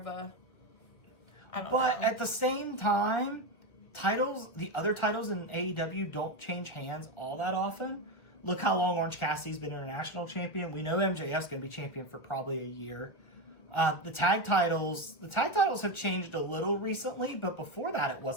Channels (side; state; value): right; late; 1.7 ms